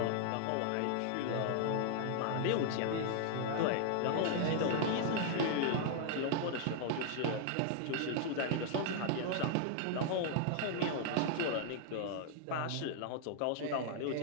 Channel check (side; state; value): both; different; correlation 0.00